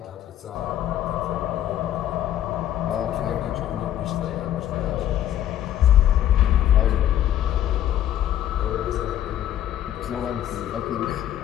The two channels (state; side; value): quieter; right; 11.5 dB